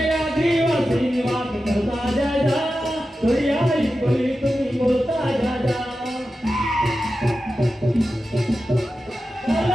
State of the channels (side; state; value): both; normal; correlation 0.92